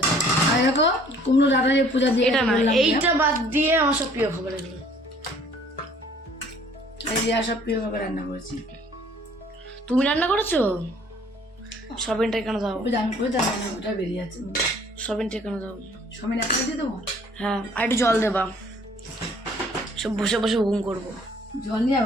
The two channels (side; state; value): both; normal; correlation 0.57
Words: আর দেখো কুমড়ো ডাটা যে পূজা দিয়ে এটা না, বললাম, এইটা বাদ দিয়ে আমার সব প্রিয় খাবার এগুলো। এই রিয়া সব প্রিয় ভাবে রান্না করেছি। তুমি রান্না করেছো? সোয়াবিনটা এখানে দাও, ওই যে আমি করে রান্না ওটা বেরিয়ে আছে। সোয়াবিনটা এখানে দাও। সবাই একটা দিয়ে দেবো, হ্যাঁ, আর একটু জল দেবা, সব বসে বসে ঘুম করবো। জল নিয়ে